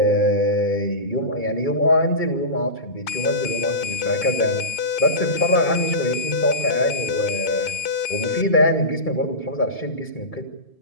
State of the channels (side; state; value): right; late; 2.5 ms